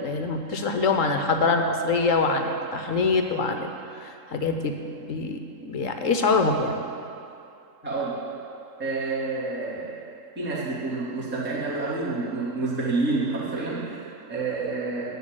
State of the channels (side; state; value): left; late; 3.8 ms